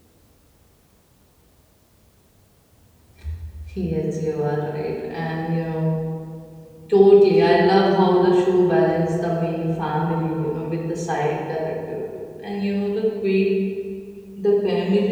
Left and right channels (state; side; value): identical; both; correlation 1.00